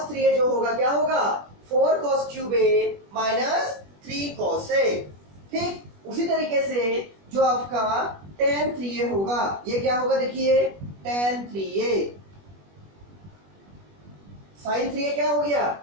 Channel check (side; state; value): left; late; 21 ms